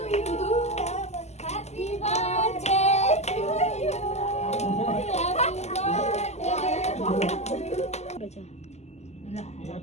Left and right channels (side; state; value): right; late; 0.32 ms